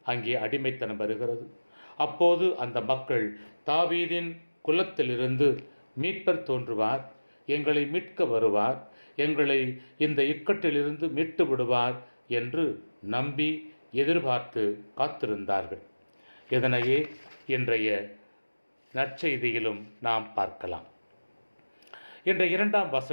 அங்கே அடிமைத்தனம் வருகிறது. அப்போது அந்த மக்கள் தாவீதின் குலத்திலிருந்து மீட்பர் தோன்றுவார், எங்களை மீட்க வருவார், எங்களை இந்த இக்கட்டிலிருந்து மீட்டு விடுவார் என்று நம்பி எதிர்பார்த்து காத்திருந்தார்கள். இதனையே இன்றைய நற்செய்தியிலும் நாம் பார்க்கலாம். இன்றைய 2ஆம்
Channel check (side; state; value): both; inverted; correlation -1.00